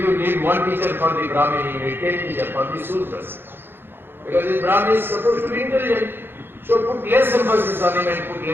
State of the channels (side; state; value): left; late; 0.10 ms